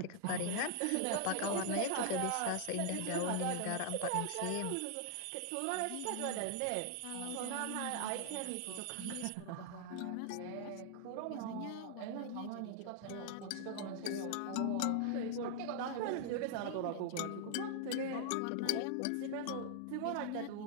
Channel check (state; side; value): different; both; correlation 0.00